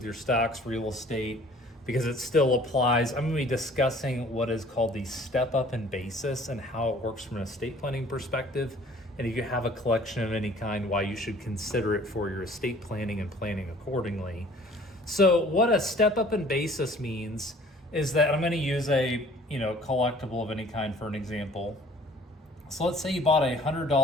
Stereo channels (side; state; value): both; normal; correlation 0.52